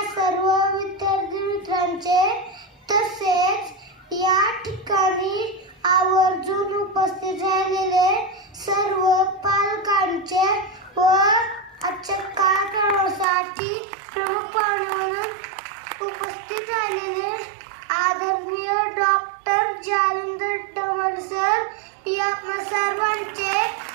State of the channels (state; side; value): drops out; left; at 13.2 s